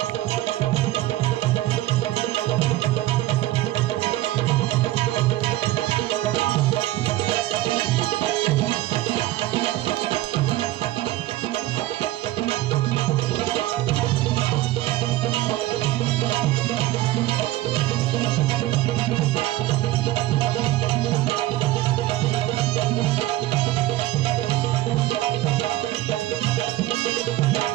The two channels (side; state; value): left; quieter; 16.0 dB